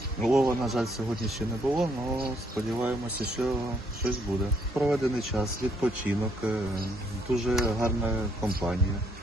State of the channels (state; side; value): normal; both; correlation 0.70